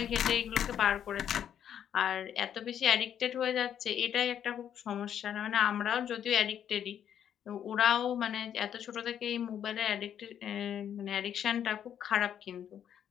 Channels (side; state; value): right; quieter; 9.4 dB